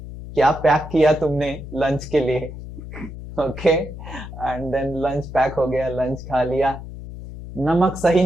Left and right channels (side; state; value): left; noise; hum, 11 dB below the sound